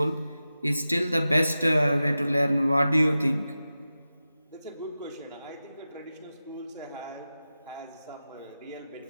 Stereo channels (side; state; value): both; inverted; correlation -0.94